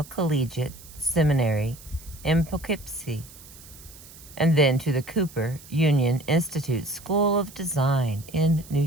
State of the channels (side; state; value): right; noise; hiss, 20 dB below the sound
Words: Collegiate Seminary in Poughkeepsie, and then to the Cooper Union Institute School of Design in New